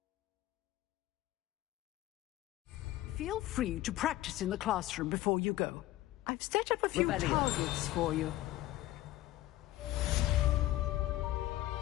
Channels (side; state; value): right; quieter; 15.9 dB